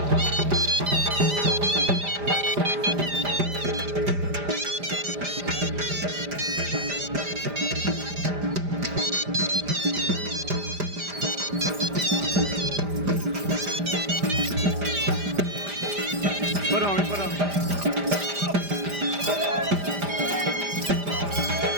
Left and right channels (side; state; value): left; late; 5.0 ms